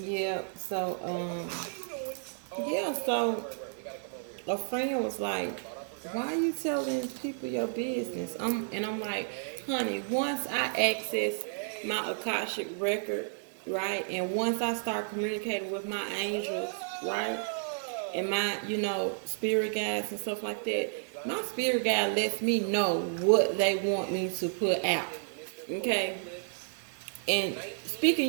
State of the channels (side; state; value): left; silent; digital silence